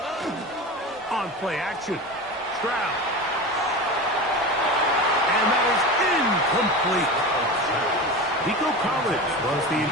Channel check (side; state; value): both; normal; correlation 0.28